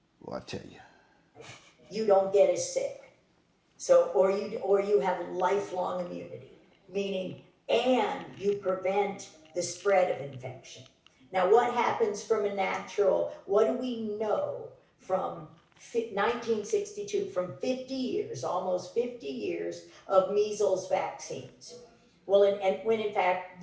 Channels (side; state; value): both; identical; correlation 1.00